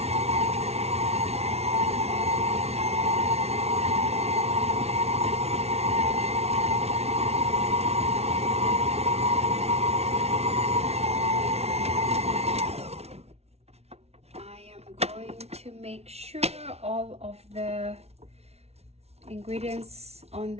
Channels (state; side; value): late; left; 0.31 ms